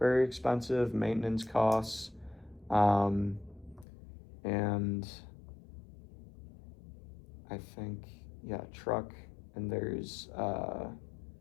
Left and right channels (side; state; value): right; drops out; at 3.9 s